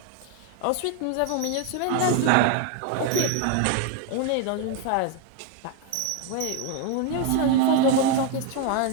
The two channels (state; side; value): different; both; correlation 0.01